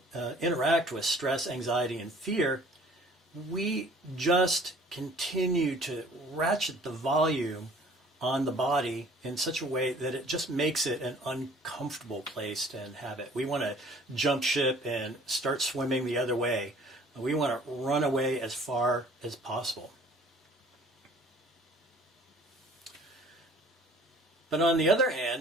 interact with stress, anxiety, and fear, we just continue to ratchet the volume on the body in such a way that it just makes it an uncomfortable place to inhabit. We want to jump ship and start swimming the other way. We want to run away as far as possible. But on the other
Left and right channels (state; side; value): normal; both; correlation 0.52